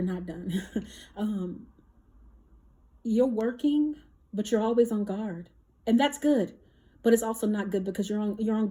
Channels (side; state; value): both; identical; correlation 1.00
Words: not done. You're working, but you're always on guard, and that's good. But it's also not good because you're on